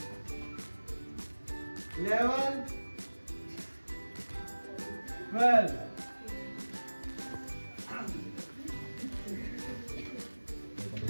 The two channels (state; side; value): inverted; both; correlation -1.00